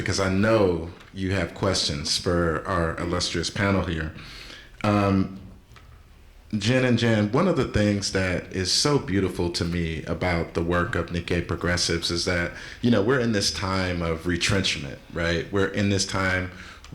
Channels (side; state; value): both; identical; correlation 1.00